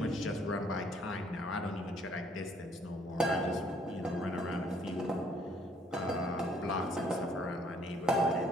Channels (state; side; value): normal; both; correlation 0.64